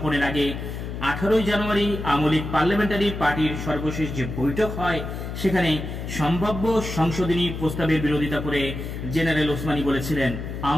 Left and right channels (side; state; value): left; noise; hum, 7 dB below the sound